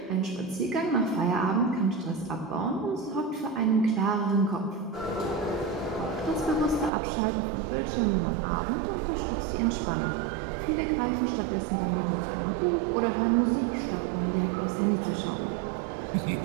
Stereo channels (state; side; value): drops out; left; at 6.9 s